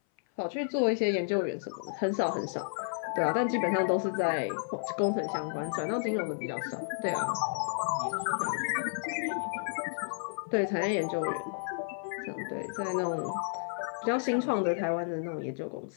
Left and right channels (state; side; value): silent; right; 57 dB below the other